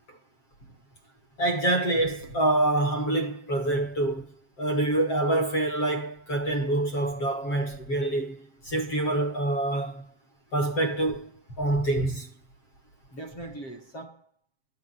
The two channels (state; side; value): late; right; 7.5 ms